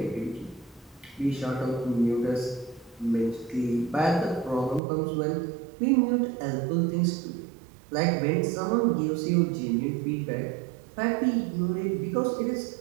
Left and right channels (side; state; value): left; drops out; at 4.8 s